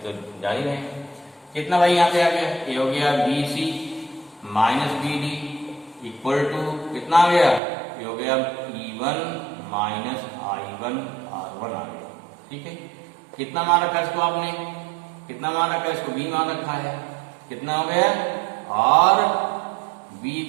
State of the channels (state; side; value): drops out; left; at 7.6 s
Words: तो जान ही रहे हैं। कितना भाई यहाँ पे आ गया, ये हो गया BC minus BD equal to कितना आ गया, ये हो गया E1 माइनस I1 R1 आ गया। ठीक है, कितना मान रखा इसको आपने, कितना मान रखा इसको, B मान रखा है, कितना हो गया, और B